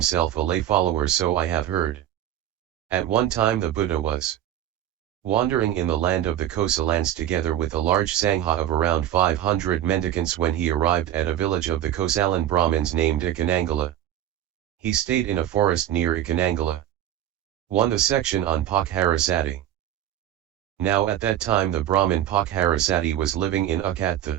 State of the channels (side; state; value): left; quieter; 11.9 dB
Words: a lay follower, so I have heard. At one time the Buddha was wandering in the land of the Kosalans together with a large Sangha of around 500 mendicants when he arrived at a village of the Kosalan Brahmins named Icchanangala. He stayed in a forest near Icchanangala. 1. The section on Pokkharasati. Now at that time the Brahmin Pokkharasati was living in